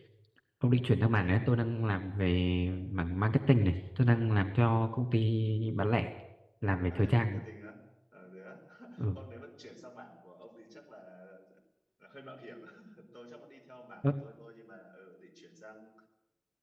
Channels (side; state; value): both; identical; correlation 1.00